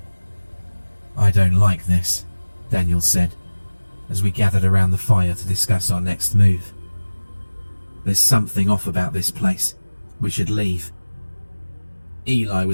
"I don't like this," Daniel said, as we gathered around the fire to discuss our next move. "There's something off about this place. We should leave." Eli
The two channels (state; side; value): inverted; both; correlation -1.00